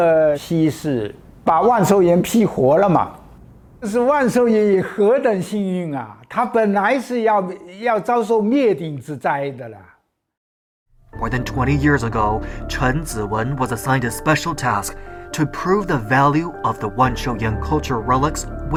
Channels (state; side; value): identical; both; correlation 1.00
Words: 西是把万寿岩批活了嘛？这是万寿岩何等幸运啊！它本来是要遭受灭顶之灾的了。More than 20 years ago, Chen Ziwen was assigned a special task to prove the value of the Wanshouyan cultural relics